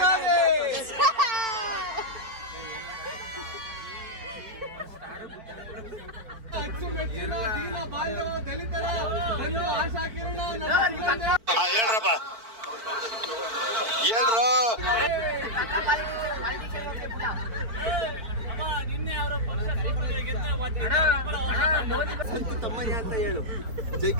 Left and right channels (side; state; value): left; late; 4.5 ms